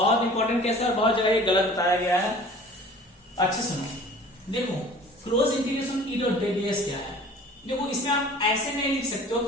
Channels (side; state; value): both; normal; correlation 0.46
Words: इंपॉर्टेंट केस है और बहुत जगह ये गलत बताया गया है। अच्छे सुनो, देखो close integration E dot ds क्या है। देखो इसमें आप ऐसे नहीं लिख सकते हो